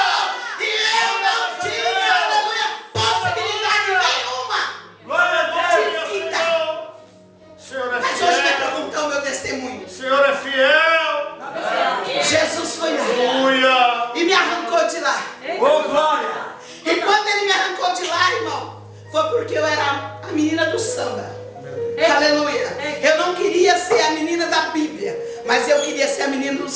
E eu não tinha, aleluia, possibilidade nenhuma de vida. Mas hoje me perguntou o meu testemunho. O Senhor é fiel. Jesus foi lá e me arrancou de lá. E quando ele me arrancou de lá, irmão, foi porque eu era a menina do samba. Aleluia. Eu não queria ser a menina da Bíblia, mas eu queria ser a menina do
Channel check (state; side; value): identical; both; correlation 1.00